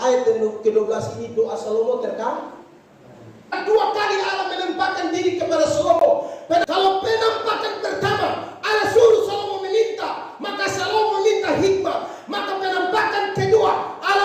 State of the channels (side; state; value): both; identical; correlation 1.00